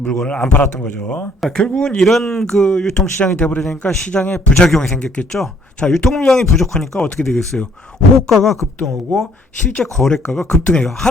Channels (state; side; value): normal; both; correlation 0.63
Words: 물건을 안 팔았던 거죠. 자, 결국은 이런 그 유통시장이 돼버리니까 시장에 부작용이 생겼겠죠. 자, 유통물량이 부족하니까 어떻게 되겠어요? 호가가 급등하고 실제 거래가가 급등해요.